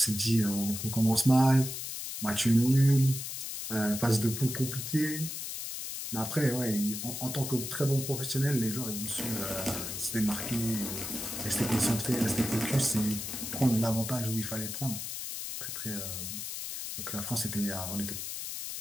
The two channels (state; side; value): noise; left; hiss, 6 dB below the sound